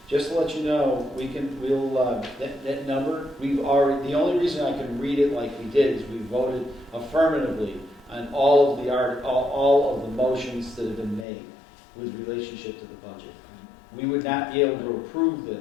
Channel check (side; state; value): right; drops out; at 11.2 s